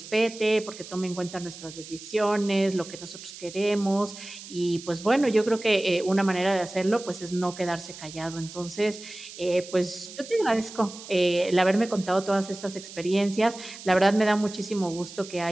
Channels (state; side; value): noise; right; hiss, 15 dB below the sound